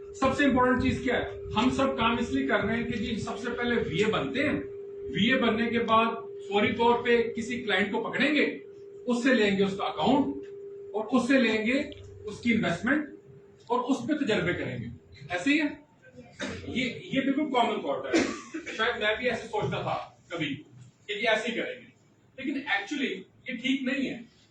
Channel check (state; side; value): identical; both; correlation 1.00